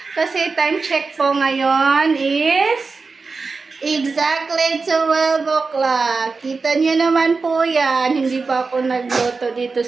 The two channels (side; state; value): left; quieter; 4.3 dB